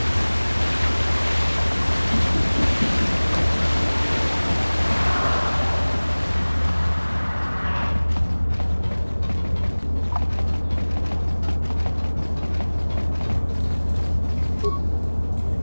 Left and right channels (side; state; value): both; inverted; correlation -1.00